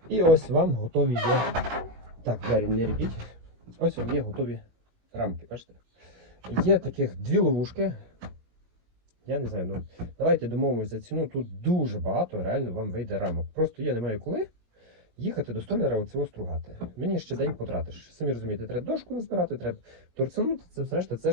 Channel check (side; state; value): left; late; 18 ms